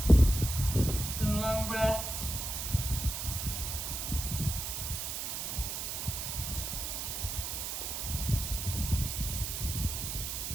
Some long breaths.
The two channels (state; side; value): noise; right; hiss, 3 dB below the sound